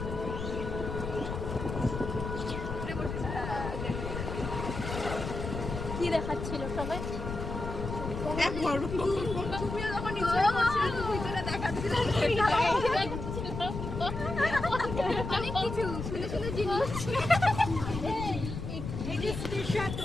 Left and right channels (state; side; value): noise; left; rumble, 6 dB below the sound